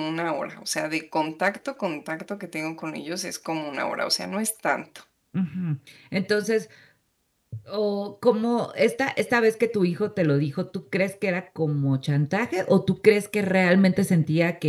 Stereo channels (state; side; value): identical; both; correlation 1.00